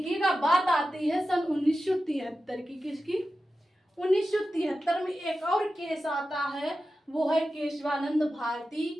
बात आती है सन 1973 की। किसकी, 1973 में एक और केस आता है, वो है केशवानंद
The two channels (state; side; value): normal; both; correlation 0.93